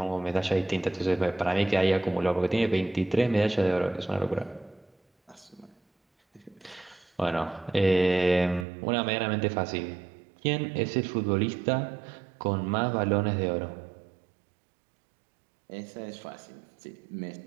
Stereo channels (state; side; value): drops out; left; at 8.7 s